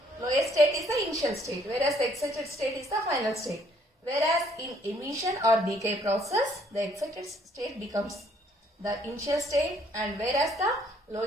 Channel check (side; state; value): both; normal; correlation 0.64